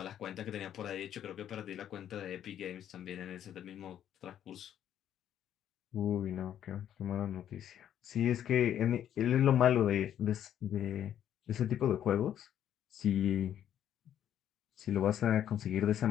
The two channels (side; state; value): right; quieter; 10.3 dB